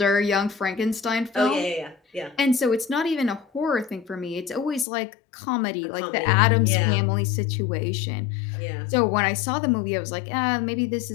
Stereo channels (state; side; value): drops out; right; at 4.9 s